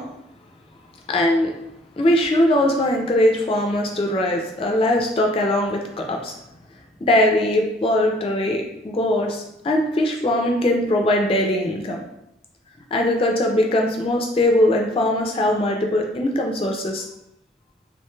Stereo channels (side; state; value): both; normal; correlation 0.58